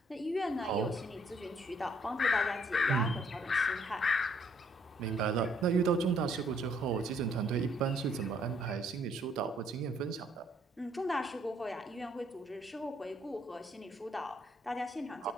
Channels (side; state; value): both; normal; correlation 0.66